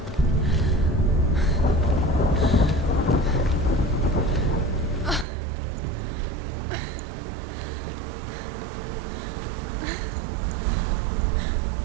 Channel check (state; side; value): drops out; left; at 5.2 s